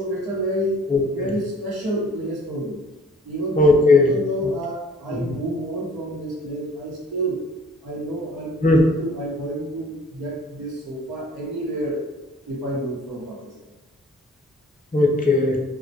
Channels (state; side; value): normal; both; correlation 0.54